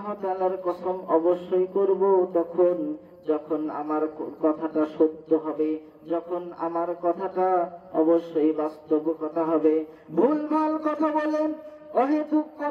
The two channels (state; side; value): identical; both; correlation 1.00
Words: তাআলার কসম অবশ্যই করব তখন যখন আমার কথাটা সত্য হবে, যখন আমার কথাটা অবশ্যই বাস্তব কথা হবে। ভুলভাল কথা বলে, অহেতুক